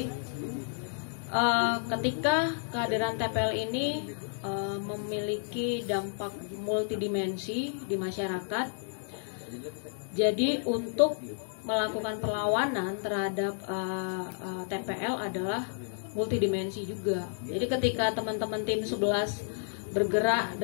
ketika kehadiran TPL ini memiliki dampak multidimensi di masyarakat, jadi untuk melakukan perlawanan terhadap TPL adalah multidimensi juga. Jadi ketika teman-teman tim 11 bergerak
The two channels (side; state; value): right; silent; digital silence